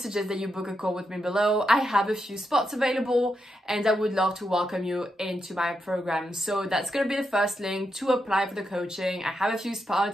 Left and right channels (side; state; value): both; normal; correlation 0.84